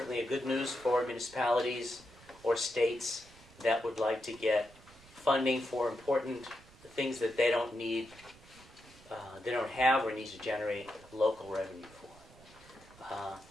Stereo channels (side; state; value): right; noise; rumble, 23 dB below the sound